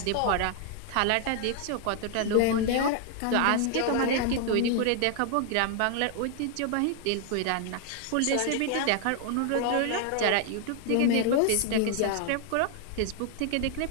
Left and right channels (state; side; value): different; both; correlation 0.00